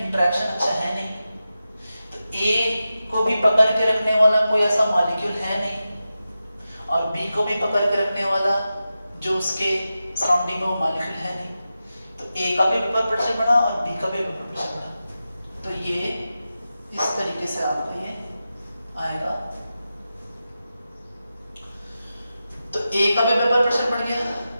अच्छा है नहीं, तो A को भी पकड़ के रखने वाला कोई ऐसा मॉलिक्यूल है नहीं और B को भी पकड़ के रखने वाला जो उसके सराउंडिंग में वो मॉलिक्यूल है नहीं, तो A का भी वेपर प्रेशर बढ़ा और B का भी वेपर प्रेशर बढ़ा। तो ये इस तरीके से आपका ये आएगा। तो A का भी वेपर प्रेशर बढ़ गया,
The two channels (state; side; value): inverted; both; correlation -0.92